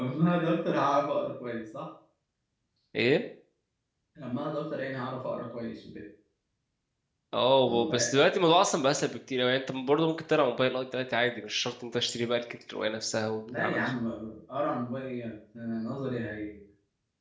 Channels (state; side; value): identical; both; correlation 1.00